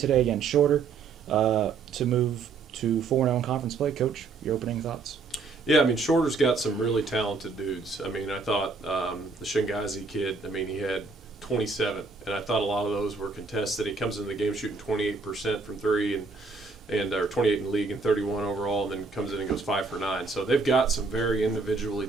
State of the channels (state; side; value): quieter; left; 4.4 dB